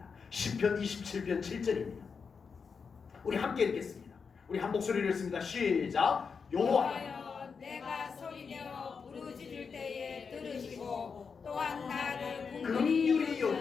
시편 27편 7절입니다. 우리 함께 읽겠습니다. 우리 한 목소리를 읽습니다. 시작. 여호와여, 내가 소리내어 부르짖을 때에 들으시고 또한 나를 긍휼히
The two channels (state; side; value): quieter; right; 5.6 dB